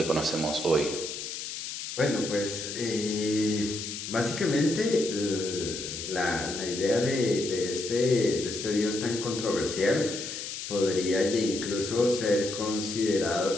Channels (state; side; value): noise; left; hiss, 7 dB below the sound